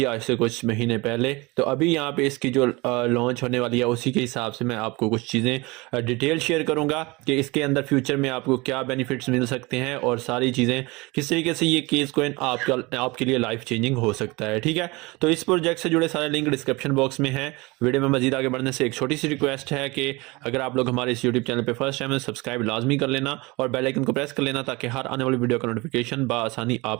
आज से कुछ महीने पहले, तो अभी यहाँ पे इसकी जो लॉन्च होने वाली है उसी के हिसाब से मैं आपको कुछ चीज़ें डिटेल शेयर करूँगा कि इसके अंदर फ्यूचर में आपको क्या बेनिफिट्स मिल सकते हैं और सारी चीज़ें किस तरीके से ये केएस कोइन आपके लिए लाइफ चेंजिंग हो सकता है। ठीक है, तो इस प्रोजेक्ट से जुड़े सारे लिंक डिस्क्रिप्शन बॉक्स में है। वीडियो में मजीद आगे बढ़ने से एक छोटी सी रिक्वेस्ट है कि अगर आप लोग हमारे इस यूट्यूब चैनल पे फर्स्ट टाइम है, सब्सक्राइब लाजमी कर लेना और बेल आइकन को प्रेस कर लेना ताकि हर आने वाली वीडियो का नोटिफिकेशन बआसानी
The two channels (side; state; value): left; quieter; 24.1 dB